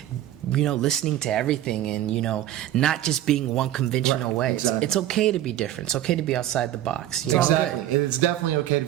listening to everything, and not just being one conventional way. Exactly. It's okay to be different. It's okay to be outside the box. Exactly. It's definitely okay to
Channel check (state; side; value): quieter; left; 12.9 dB